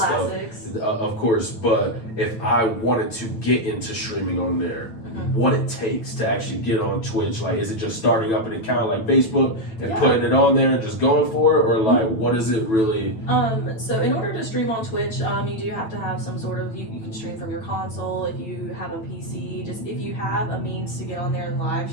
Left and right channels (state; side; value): late; right; 9.0 ms